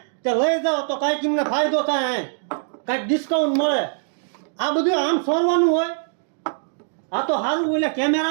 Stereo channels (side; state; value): left; silent; digital silence